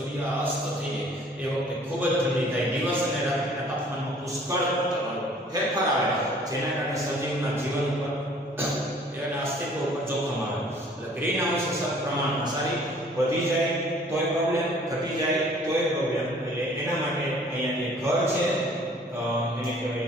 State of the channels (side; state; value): both; normal; correlation 0.55